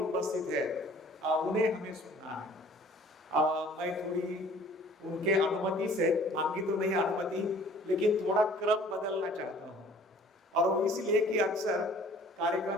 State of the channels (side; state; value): both; normal; correlation 0.52